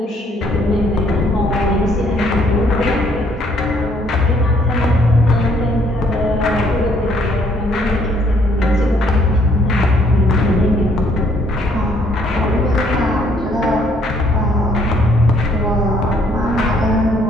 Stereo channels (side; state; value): both; normal; correlation 0.65